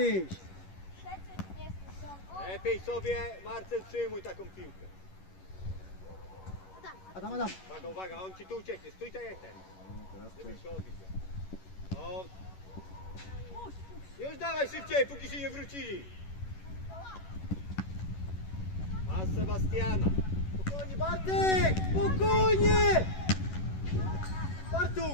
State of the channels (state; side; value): late; right; 11 ms